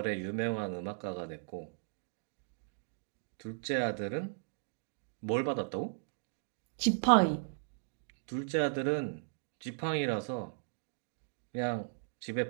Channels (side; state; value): left; silent; digital silence